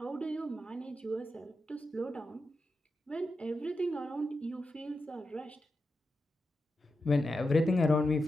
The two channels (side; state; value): both; normal; correlation 0.89